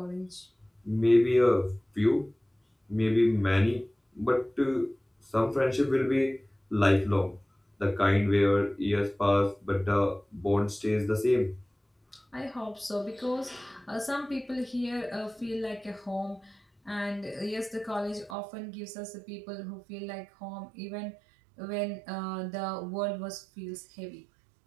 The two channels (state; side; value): drops out; left; at 18.4 s